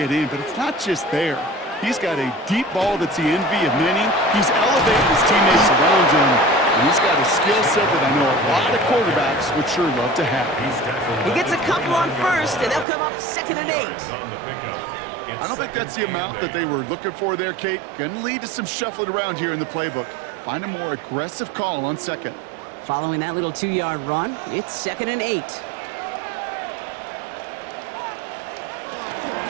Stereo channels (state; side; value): drops out; left; at 12.9 s